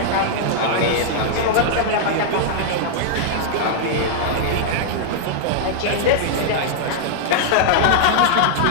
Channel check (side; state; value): both; different; correlation -0.01